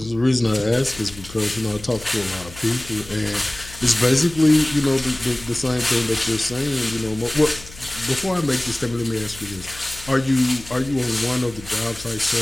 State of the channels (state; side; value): noise; left; hum, 17 dB below the sound